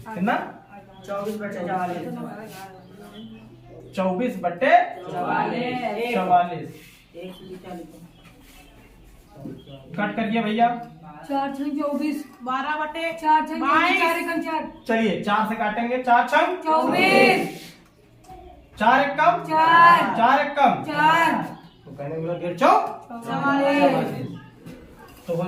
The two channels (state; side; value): identical; both; correlation 1.00